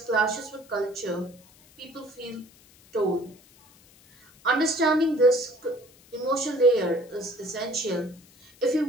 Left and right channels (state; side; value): noise; left; hiss, 27 dB below the sound